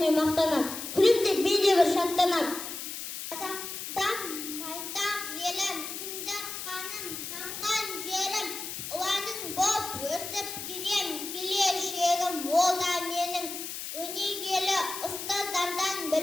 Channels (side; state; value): left; noise; hiss, 7 dB below the sound